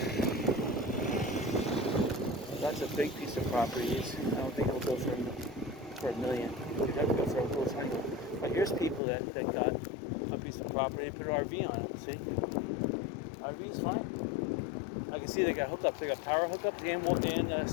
That's a big piece of property. I don't think it'll go for $1 million. You'd have to go for a little tiny. But here's people that got a piece of property and put an RV on it. See? RV's fine. I can see they got hookups. They got power hookups and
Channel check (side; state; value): right; drops out; at 9.0 s